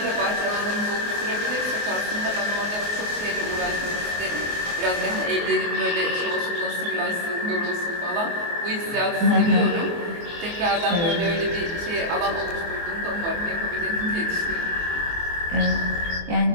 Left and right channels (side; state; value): left; late; 24 ms